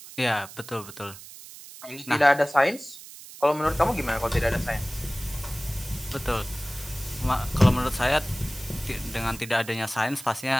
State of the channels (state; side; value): noise; right; hiss, 16 dB below the sound